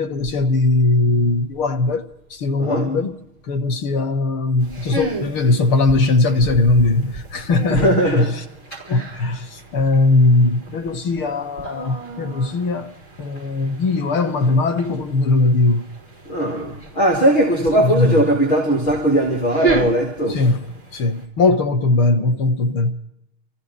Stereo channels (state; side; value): late; right; 6.6 ms